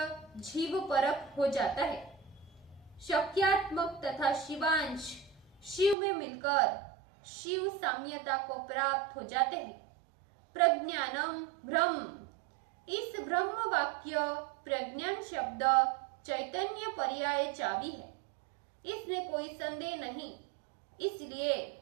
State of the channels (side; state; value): left; drops out; at 6.0 s